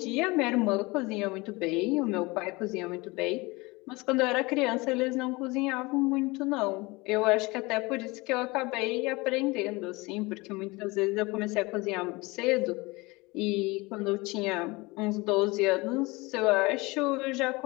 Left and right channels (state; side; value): quieter; right; 23.9 dB